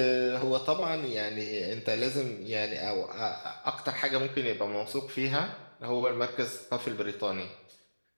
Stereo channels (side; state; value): both; inverted; correlation -1.00